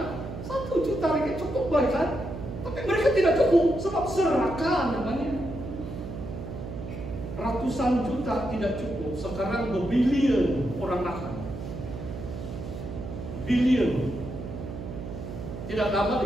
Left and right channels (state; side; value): noise; right; hum, 8 dB below the sound